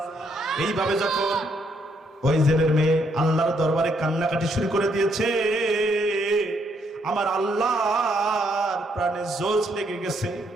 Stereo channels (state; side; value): normal; both; correlation 0.73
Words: এইভাবে যখন ওই জেলের মেয়ে আল্লাহর দরবারে কান্নাকাটি শুরু করে দিয়েছে, আমার আল্লাহর প্রাণে জোশ লেগে গেছে।